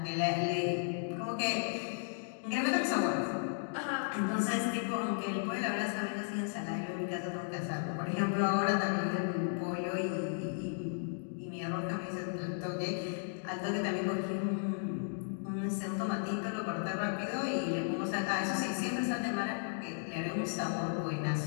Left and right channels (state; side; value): silent; right; digital silence